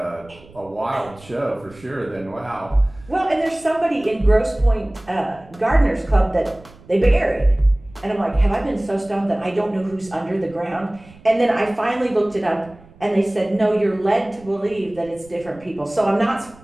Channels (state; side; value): noise; right; rumble, 23 dB below the sound